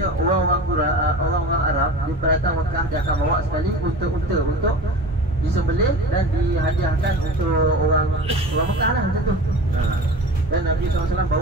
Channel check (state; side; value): normal; both; correlation 0.35